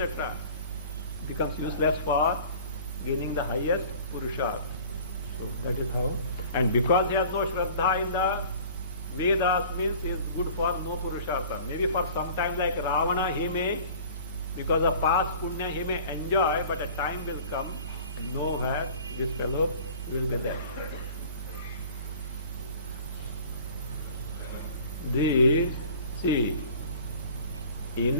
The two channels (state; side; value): inverted; both; correlation -0.46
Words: Becomes useless for gaining the highest purushartha. So that is how. And because he has no Shraddha in the Vedas, means he is good for no purushartha. Maybe for some time like Ravana, he may, because of past punya, he may enjoy, but a time will come and nowhere this fellow will be there. This, see,